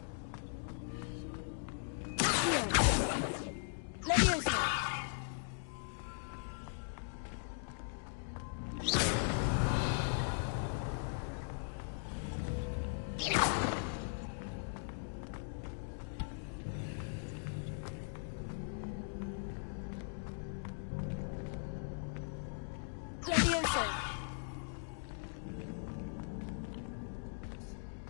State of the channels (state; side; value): silent; right; digital silence